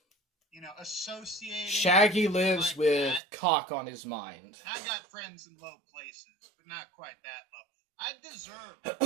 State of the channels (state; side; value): drops out; left; at 3.2 s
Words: Associated. Shaggy lives like with that. cock on his mind. I got friends in low places, but not quite that low. I deserve a